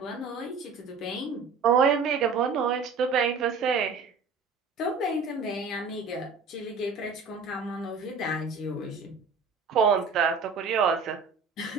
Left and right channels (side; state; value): left; quieter; 4.8 dB